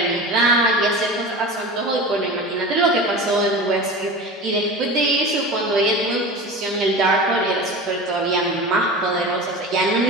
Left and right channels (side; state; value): both; normal; correlation 0.31